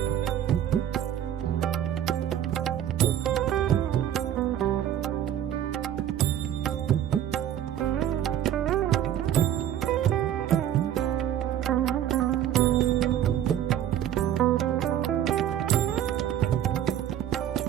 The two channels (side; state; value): left; quieter; 10.8 dB